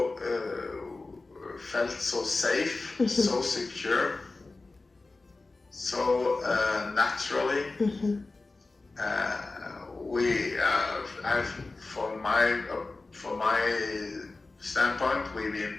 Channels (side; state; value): right; quieter; 3.4 dB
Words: felt so safe, so secure, so naturally. From my standpoint,